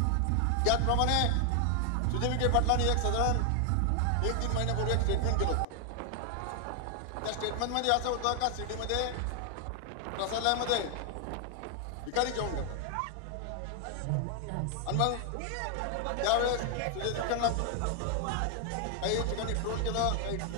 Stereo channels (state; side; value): different; both; correlation 0.00